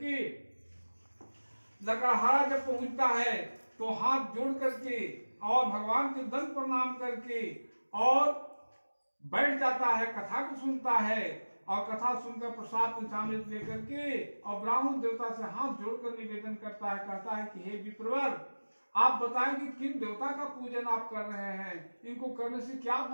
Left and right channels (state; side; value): inverted; both; correlation -1.00